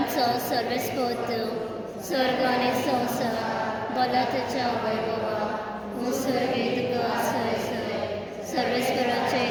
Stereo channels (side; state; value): both; identical; correlation 1.00